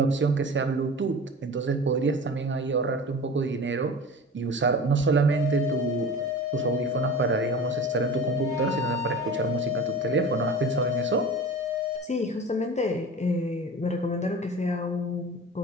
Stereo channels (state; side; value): normal; both; correlation 0.35